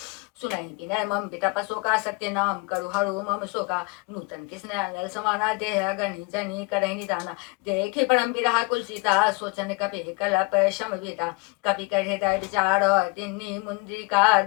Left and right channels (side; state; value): right; quieter; 28.9 dB